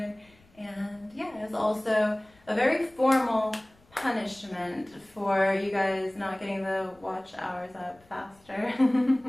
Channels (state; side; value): noise; left; rumble, 30 dB below the sound